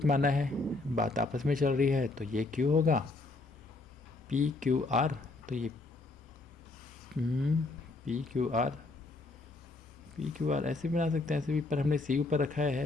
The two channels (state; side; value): quieter; right; 3.3 dB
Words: माना है, बात आपस में चल रही है, तो ये क्यू होगा पी क्यू आर। तो ये पी क्यू आर ऐसे बना सकते हैं, ऐसे भी, पर हमने सी ऊपर रखा